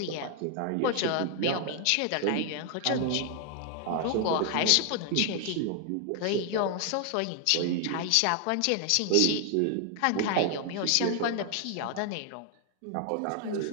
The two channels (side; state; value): both; different; correlation 0.00